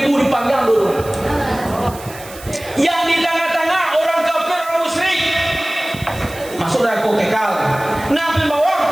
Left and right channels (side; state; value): right; noise; hiss, 17 dB below the sound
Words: dipanggang dulu. Yang di tengah-tengah orang kafir, orang musyrik masuk neraka kekal. Nah di bawah